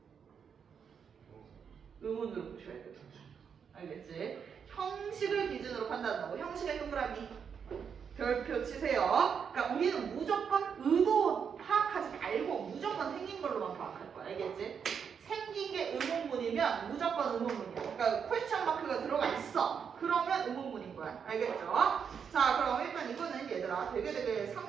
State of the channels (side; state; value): left; quieter; 7.0 dB